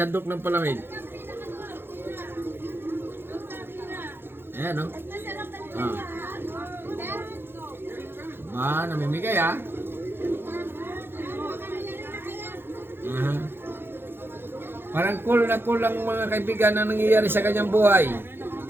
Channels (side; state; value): left; late; 0.10 ms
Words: ng palamig. Ayan, no? Namimigay, ah. Parang cool na cool lang mga kaibigan na nangyayari sa kanyang buhay.